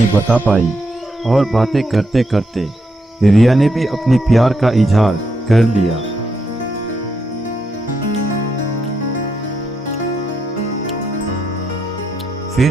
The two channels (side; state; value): both; normal; correlation 0.80